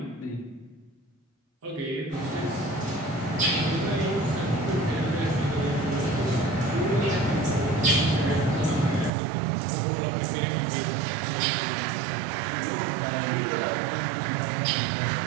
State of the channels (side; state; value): left; drops out; at 9.1 s